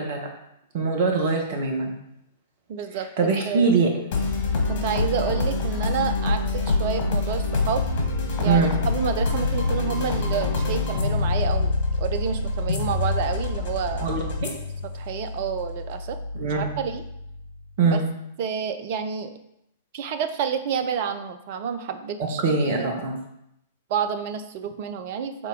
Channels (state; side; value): inverted; both; correlation -0.42